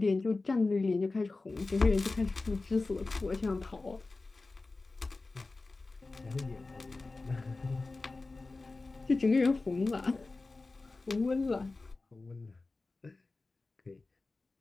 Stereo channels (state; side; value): quieter; right; 3.5 dB